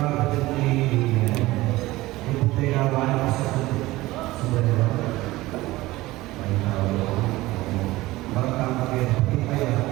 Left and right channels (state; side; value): quieter; left; 18.6 dB